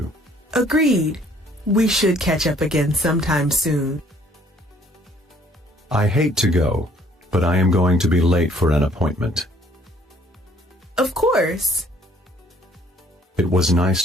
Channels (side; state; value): both; normal; correlation 0.60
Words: Agreed. We should catch up again sometime soon. I hate to go, but I am going to be late for an appointment. Of course. It was nice